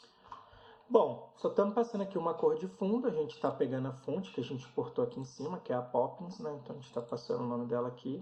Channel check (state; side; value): identical; both; correlation 1.00